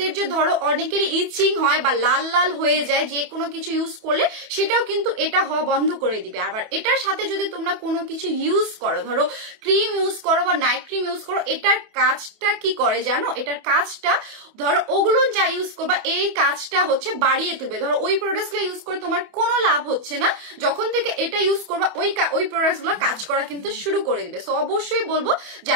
যে ধরো অনেকেরই ইচিং হয় বা লাল লাল হয়ে যায় যে কোনো কিছু ইউজ করলে, সেটাও কিন্তু এটা হওয়া বন্ধ করে দিবে। আবার এটার সাথে যদি তোমরা কোনো কিছু ইউজ করো, ধরো ক্রিম ইউজ করো বা নাইট ক্রিম ইউজ করো, এটার কাজটা কি করে জানো, এটার কাজটা ধরো ওগুলো যা ইউজ করবা এই কাজটা হচ্ছে বাড়িয়ে তুলবে। ধরো ওই প্রোডাক্ট গুলো ইউজ করে তোমার কোনো লাভ হচ্ছে না, যখন থেকে এটা ইউজ করবা ওই প্রোডাক্ট গুলো কাজ করা কিন্তু শুরু করে দিবে। সো অবশ্যই বলবো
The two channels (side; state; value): left; late; 28 ms